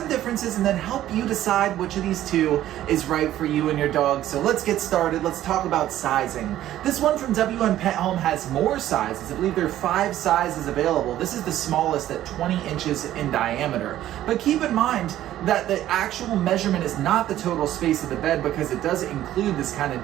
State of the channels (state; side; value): quieter; left; 13.1 dB